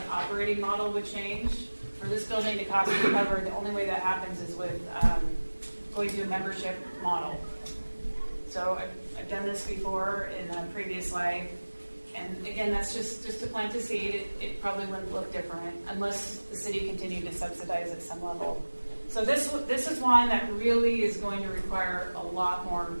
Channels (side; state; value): both; inverted; correlation -1.00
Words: operating model would change. For this building to cost recovered, the only way that happens is with going to a membership model. So I've done this before in a previous life, and again, that's just to plant a seed. It probably wouldn't look different unless the city continued to subsidize at some level. So this is one that really is going to require a lot more